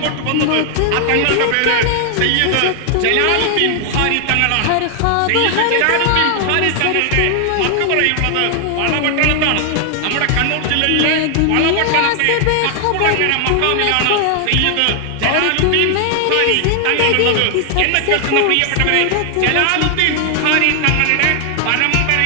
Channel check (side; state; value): both; different; correlation 0.00